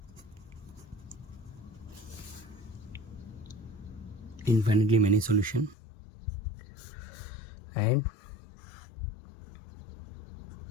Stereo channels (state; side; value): drops out; right; at 5.8 s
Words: Infinitely many solution and